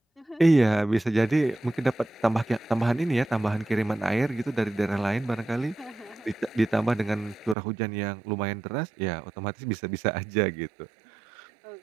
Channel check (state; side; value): drops out; left; at 7.6 s